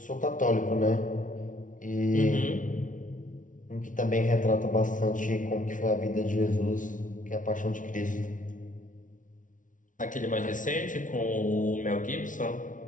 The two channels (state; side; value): late; right; 0.38 ms